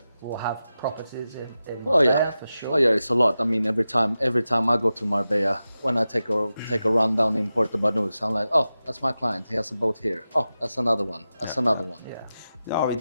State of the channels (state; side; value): inverted; both; correlation -0.93